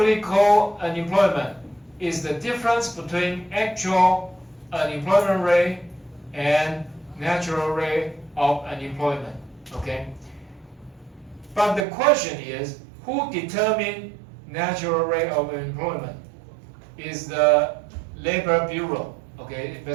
unemployment? Is the difference between actual unemployment rate and natural rate of unemployment, okay? But the question is, who determines natural rate of unemployment? Is the Labor Bureau, okay?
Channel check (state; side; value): drops out; left; at 11.9 s